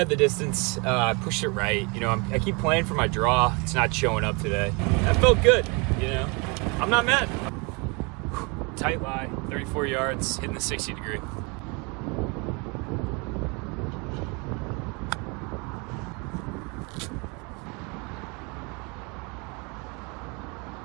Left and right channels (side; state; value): left; quieter; 30.3 dB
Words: the distance. I pushed it right. You know, I keep playing for my draw. It's not showing up today. That felt good, you know. I'm not mad. Tight lie, 34 yards, hitting the 60 degree.